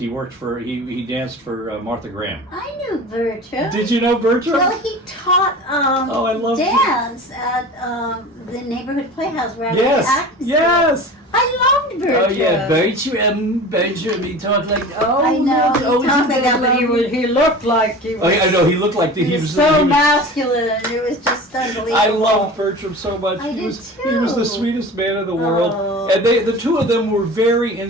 worked for he danced for Martha Graham. I knew Bertram. Did you know Bertram? Well, he taught I love dance at the neighborhood playhouse where I was acting. Yes. I loved Bertram. Oh yeah, Bertram. He talked like I know. He talked like that, but he looked like he was. Oh yeah, I know. He looked like he was so masculine. It was just unbelievable. I loved Bertram so much. He was the sweetest man in the world, and the two of them were very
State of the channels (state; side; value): normal; both; correlation 0.36